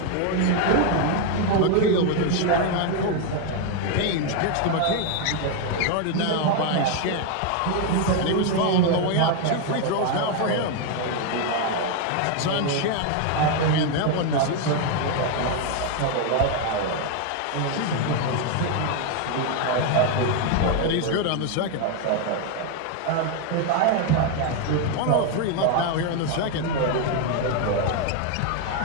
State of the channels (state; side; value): different; both; correlation 0.01